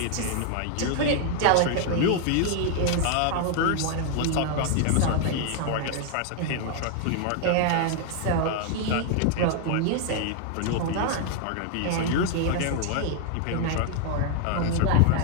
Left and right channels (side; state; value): both; different; correlation 0.00